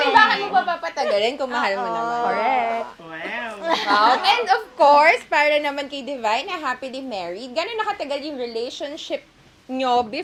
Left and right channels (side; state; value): both; identical; correlation 1.00